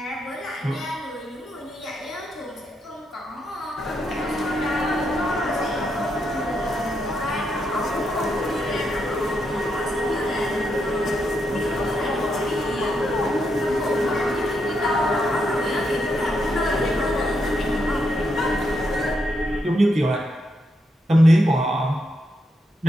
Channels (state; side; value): normal; both; correlation 0.81